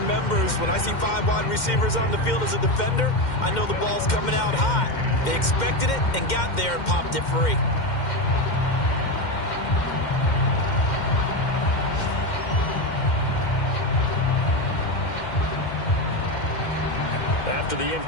when I see 5 wide receivers on the field as a defender, I know the ball's coming out hot. They expected it and got there and popped it free. After the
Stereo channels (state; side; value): late; right; 2.1 ms